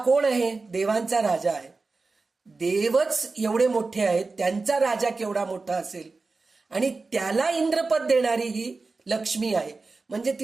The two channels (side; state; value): left; quieter; 3.9 dB